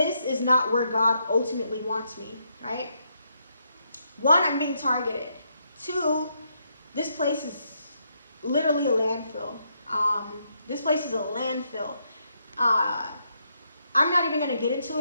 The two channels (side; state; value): both; inverted; correlation -0.77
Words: is not where God ultimately wants me, right? One, I'm being targeted. Two, this place is literally a landfill. This place is a landfill. I'm not even going to get into